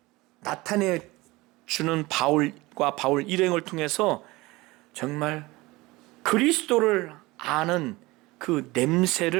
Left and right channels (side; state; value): left; quieter; 21.2 dB